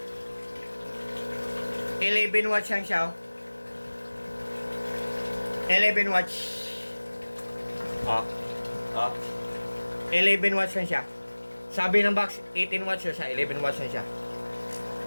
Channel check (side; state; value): both; inverted; correlation -1.00